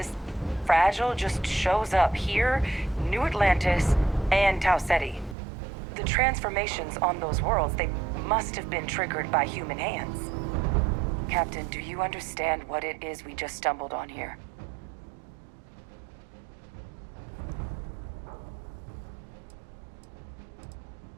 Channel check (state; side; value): drops out; left; at 5.4 s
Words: fragile, just shows up here, New Atlantis, and Tau Ceti. The transformations on those worlds, they must have been triggered by human hands. Captain, do you understand what it is we just stumbled on here?